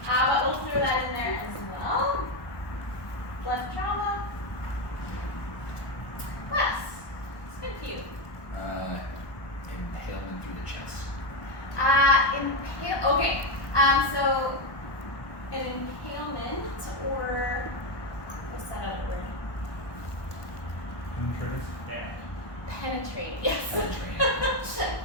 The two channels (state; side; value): late; right; 1.1 ms